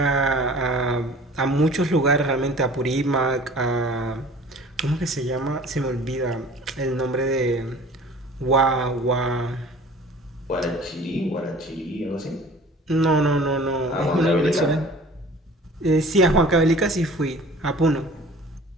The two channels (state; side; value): normal; both; correlation 0.46